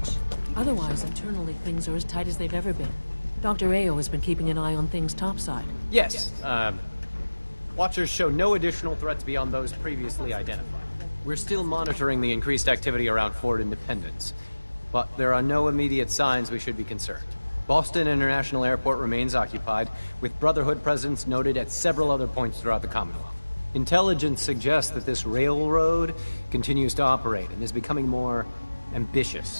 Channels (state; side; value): inverted; both; correlation -1.00